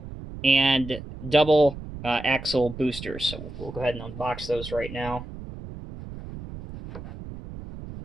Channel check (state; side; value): noise; right; rumble, 12 dB below the sound